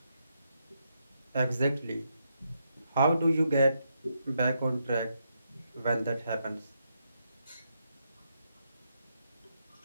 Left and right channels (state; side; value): inverted; both; correlation -0.80